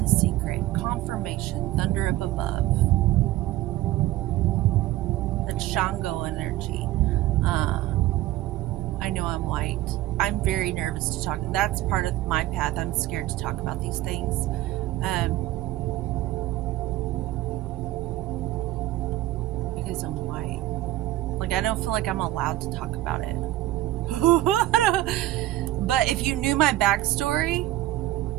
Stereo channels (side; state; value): left; quieter; 15.4 dB